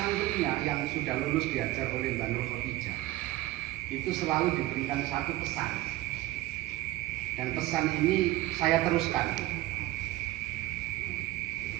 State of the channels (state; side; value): quieter; left; 17.0 dB